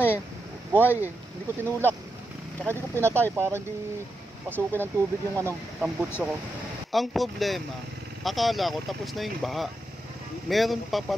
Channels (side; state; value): both; normal; correlation 0.86